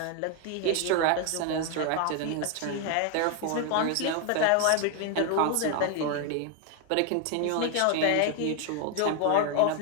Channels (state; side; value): different; both; correlation 0.01